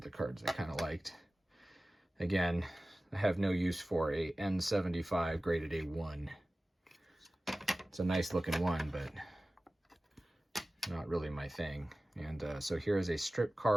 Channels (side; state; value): both; normal; correlation 0.97